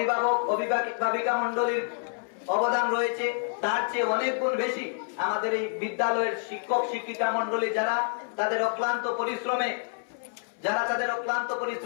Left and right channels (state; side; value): silent; right; 59 dB below the other